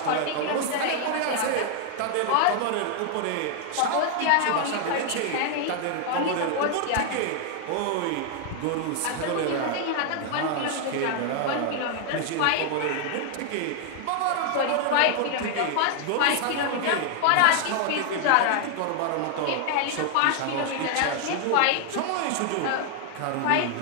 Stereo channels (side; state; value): both; different; correlation 0.00